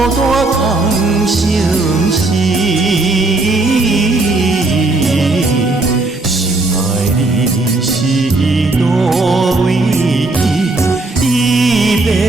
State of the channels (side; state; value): left; quieter; 3.1 dB